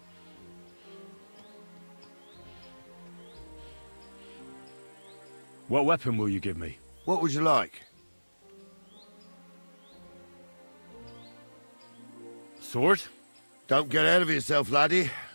What weapon will you give me? What would you like? Sword? Don't get ahead of yourself, laddie.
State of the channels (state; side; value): inverted; both; correlation -1.00